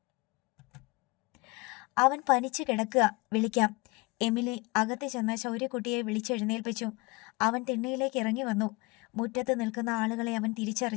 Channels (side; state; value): right; quieter; 25.3 dB